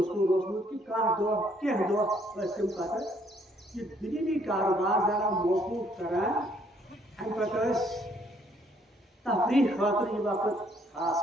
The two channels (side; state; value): both; normal; correlation 0.66